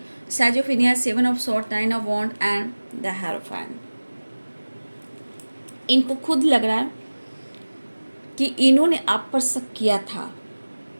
सेजोफेनिया 7 of sword, 9 of wand and the hierophant, इनको खुद लग रहा है कि इन्होंने आप पर शक किया था,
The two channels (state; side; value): inverted; both; correlation -1.00